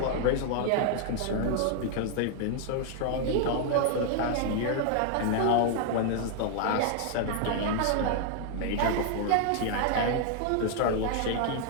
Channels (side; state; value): both; different; correlation 0.00